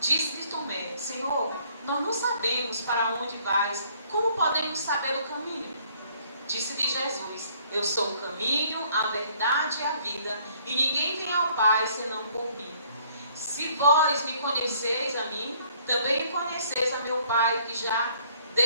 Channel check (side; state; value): both; inverted; correlation -0.62